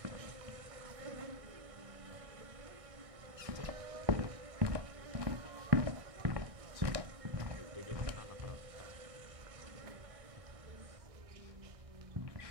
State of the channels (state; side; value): late; left; 1.6 ms